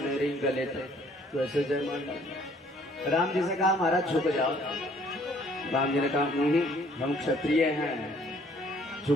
रही गले तक, तो ऐसे जयमाल डाले। राम जी से कहा महाराज झुक जाओ। राम जी ने कहा नहीं, हम क्षत्रिय हैं,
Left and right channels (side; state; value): both; normal; correlation 0.60